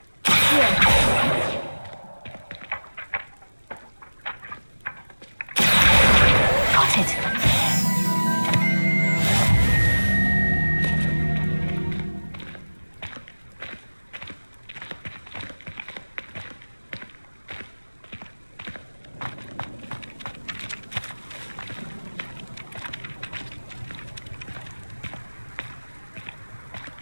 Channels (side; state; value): both; inverted; correlation -1.00